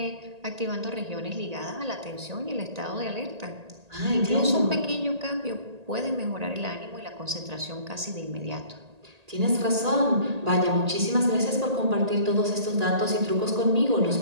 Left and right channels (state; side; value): late; left; 1.8 ms